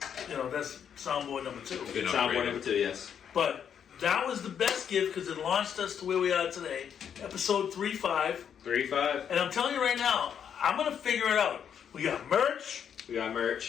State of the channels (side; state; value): right; quieter; 8.2 dB